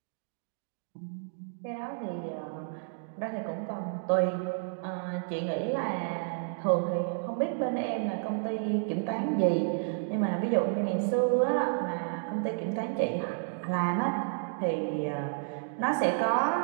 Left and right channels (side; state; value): left; silent; digital silence